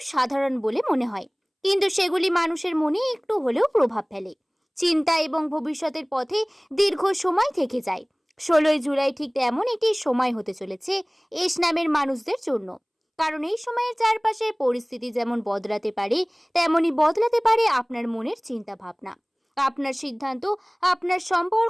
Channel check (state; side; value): identical; both; correlation 1.00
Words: সাধারণ বলে মনে হয়, কিন্তু সেগুলি মানুষের মনে একটু হলেও প্রভাব ফেলে, চিন্তা এবং ভবিষ্যতের পথে দীর্ঘ সময় থেকে যায়। 16ই জুলাই ঠিক এমন একটি সময় হতে চলেছে এস নামের মানুষদের জন্য, কারণ এই সময়ের চারপাশের পরিস্থিতি যেমন বদলাতে পারে, তেমনই বদলাতে পারে আপনার মনের চিন্তা ভাবনা, আপনার সিদ্ধান্ত, আপনার